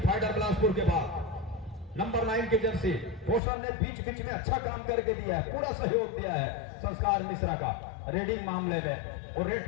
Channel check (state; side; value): drops out; right; at 3.4 s